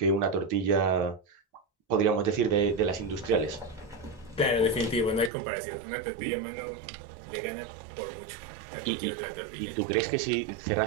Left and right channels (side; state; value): left; drops out; at 5.3 s